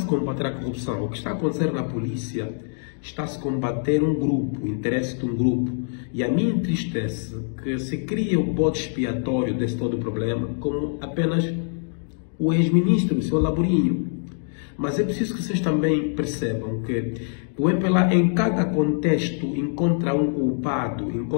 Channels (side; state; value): right; silent; 62 dB below the other